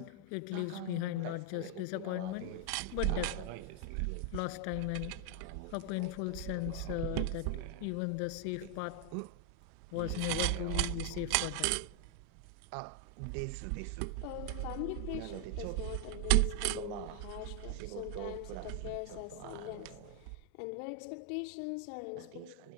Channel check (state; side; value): different; both; correlation 0.00